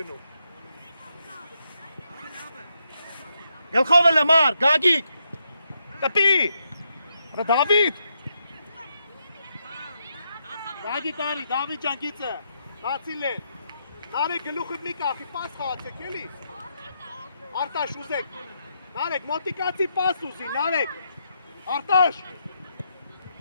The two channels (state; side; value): inverted; both; correlation -0.80